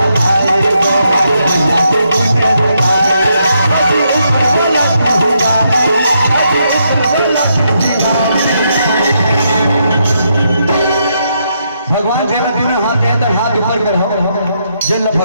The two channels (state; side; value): inverted; both; correlation -0.79